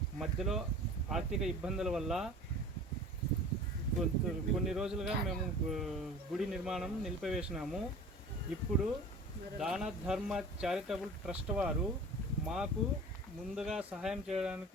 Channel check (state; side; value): normal; both; correlation 0.41